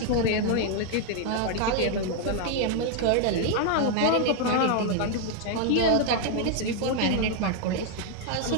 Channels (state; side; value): different; both; correlation 0.00